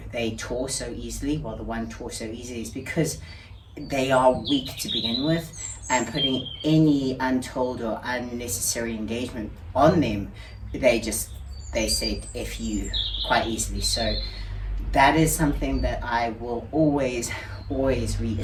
tore so easily. Well, the one tore so easily is because they are weak to begin with, and putting any untold or unnecessary engagement on them, they say F you quite easily. So that is something that I will always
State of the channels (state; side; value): identical; both; correlation 1.00